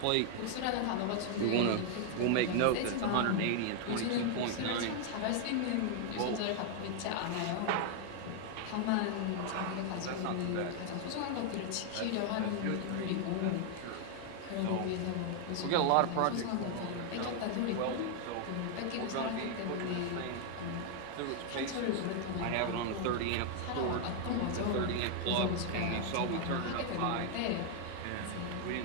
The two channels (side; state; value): both; different; correlation 0.00